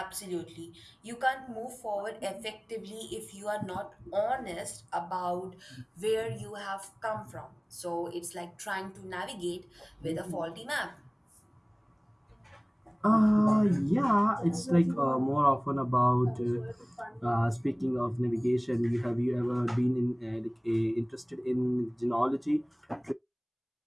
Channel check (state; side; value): identical; both; correlation 1.00